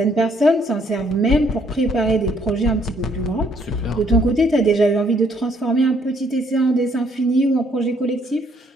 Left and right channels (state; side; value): normal; both; correlation 0.67